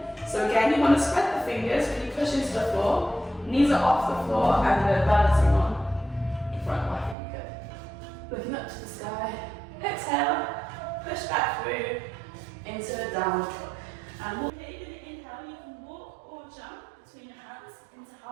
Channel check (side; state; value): left; drops out; at 7.2 s